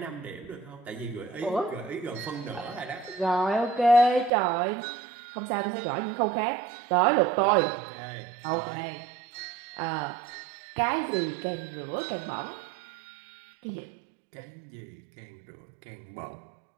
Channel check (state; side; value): drops out; left; at 4.3 s